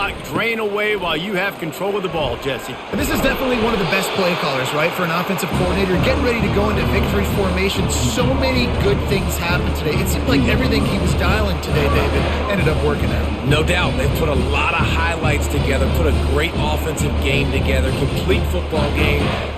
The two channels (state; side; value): identical; both; correlation 1.00